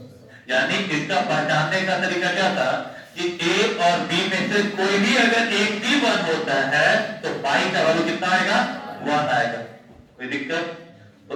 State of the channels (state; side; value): identical; both; correlation 1.00